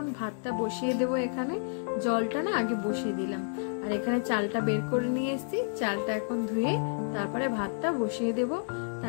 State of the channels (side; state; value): right; silent; digital silence